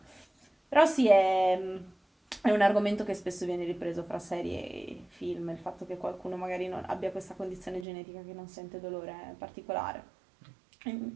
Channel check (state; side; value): drops out; left; at 7.9 s